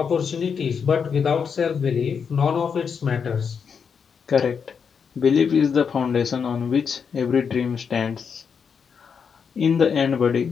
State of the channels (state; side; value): quieter; right; 6.4 dB